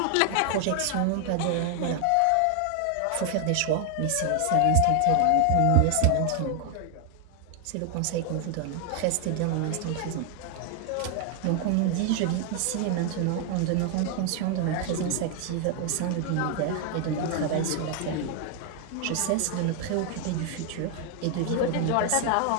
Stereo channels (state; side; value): different; both; correlation 0.00